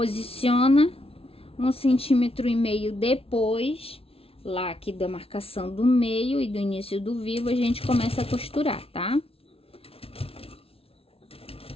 1,5 centímetro depois, lá aqui da marcação do meio e do início do vivo, a gente começa a costurar, tá?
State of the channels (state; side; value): late; right; 0.27 ms